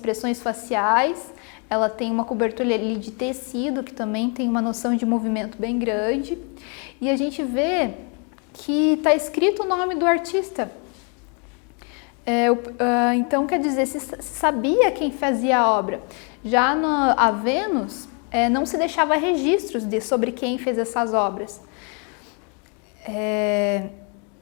faciais, ela tem uma cobertura ali de tecido, que também tem uma noção de movimento bem grande, e a gente vê que está escrito o nome do artista. Então, quer dizer, se sabia quem fazia a obra. Já a Vênus, não se deixava registros sobre quem fez essas obras.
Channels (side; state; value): right; quieter; 37.0 dB